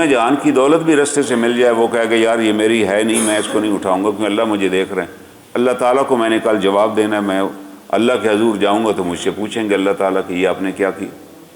جہان کی دولت بھی رستے سے مل جائے، وہ کہے گا یار یہ میری ہے نہیں، میں اس کو نہیں اٹھاؤں گا کیونکہ اللہ مجھے دیکھ رہے ہیں، اللہ تعالیٰ کو میں نے کل جواب دینا ہے، میں اللہ کے حضور جاؤں گا تو مجھ سے پوچھیں گے اللہ تعالیٰ کہ یہ آپ نے کیا کیا۔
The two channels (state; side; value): identical; both; correlation 1.00